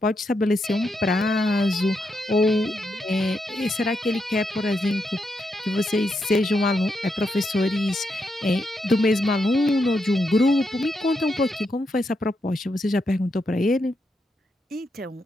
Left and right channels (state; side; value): normal; both; correlation 0.82